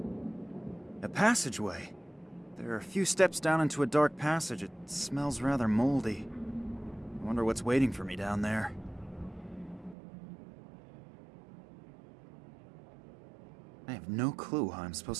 A passageway. There are a few steps down into a dark passage. It smells rather moldy. I wonder what's waiting for me down there. I have no clue how I'm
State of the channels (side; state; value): left; drops out; at 10.0 s